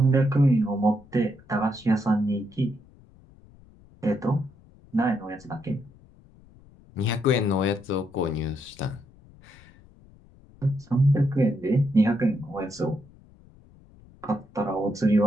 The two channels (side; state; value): left; noise; rumble, 25 dB below the sound